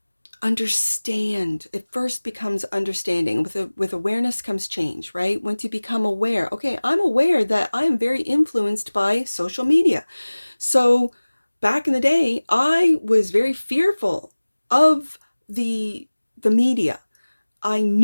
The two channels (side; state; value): both; inverted; correlation -1.00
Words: understand. It first becomes understanding. With awareness comes change, right? Once you become aware, okay, I'm aware that I am very influenced by social media. So back in the day, I was very fearful of the media. I